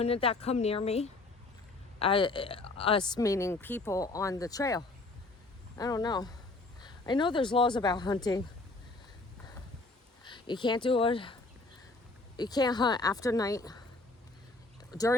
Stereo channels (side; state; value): right; quieter; 3.2 dB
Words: that come near me? Us meaning people on the trail. I don't know. I know there's laws about hunting. You can't do it. You can't hunt after night,